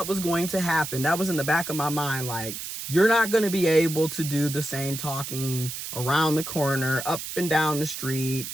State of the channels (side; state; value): right; noise; hiss, 7 dB below the sound